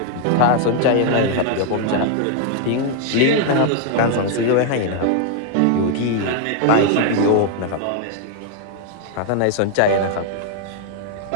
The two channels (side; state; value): both; different; correlation 0.00